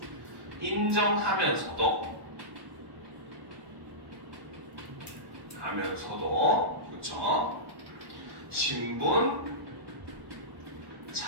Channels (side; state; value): left; late; 1.1 ms